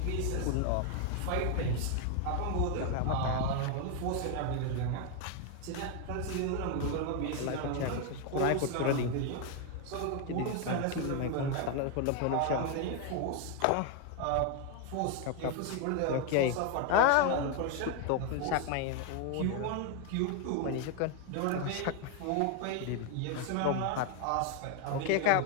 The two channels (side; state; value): both; different; correlation 0.01